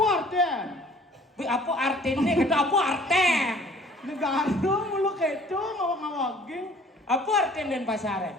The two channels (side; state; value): both; normal; correlation 0.53